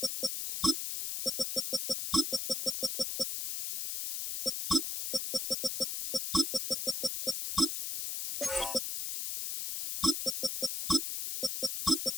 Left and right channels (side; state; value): left; noise; hiss, 4 dB below the sound